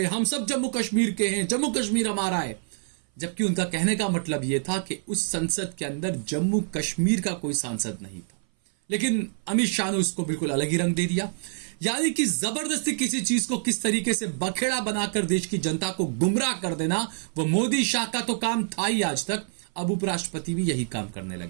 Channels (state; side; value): silent; left; 58 dB below the other